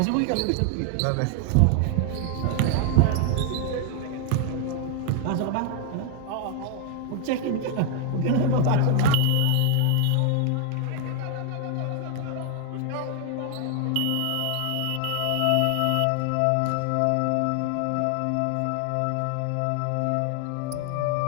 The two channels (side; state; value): both; different; correlation 0.00